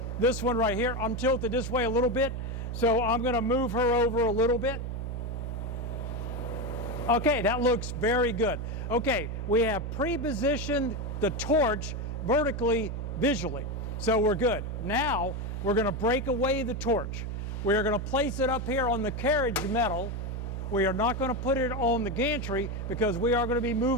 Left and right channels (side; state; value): right; noise; hum, 4 dB below the sound